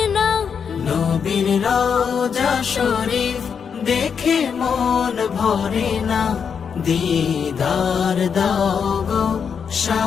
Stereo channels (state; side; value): quieter; right; 6.7 dB